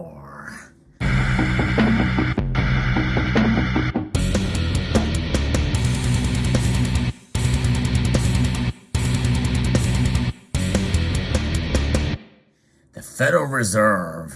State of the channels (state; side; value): identical; both; correlation 1.00